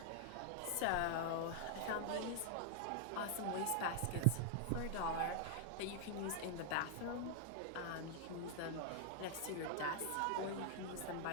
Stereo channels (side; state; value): both; different; correlation 0.00